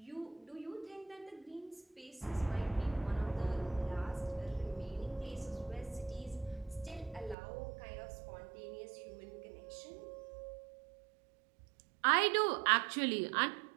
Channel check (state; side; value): drops out; left; at 7.4 s